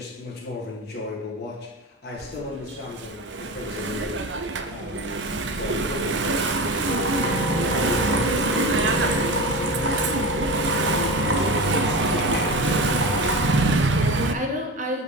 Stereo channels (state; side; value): normal; both; correlation 0.27